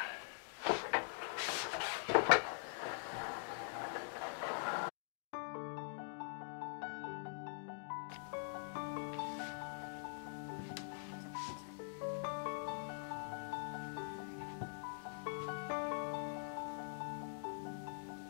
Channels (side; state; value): right; silent; digital silence